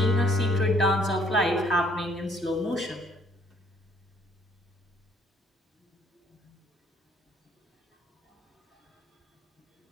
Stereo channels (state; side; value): normal; both; correlation 0.63